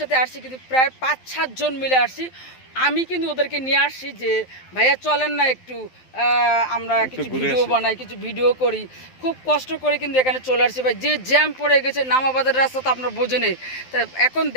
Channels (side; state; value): right; late; 12 ms